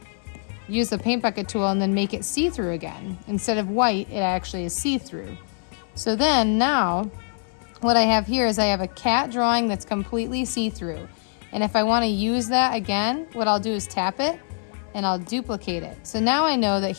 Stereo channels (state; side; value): silent; right; 56 dB below the other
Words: use the paint bucket tool and then make it see-through again. Instead of white, it actually is see-through. So then now, what I have here is I have a cat drawing that's completely see-through. And if I want to use that again, what I'll do is tap it and I'll duplicate it. So now I know that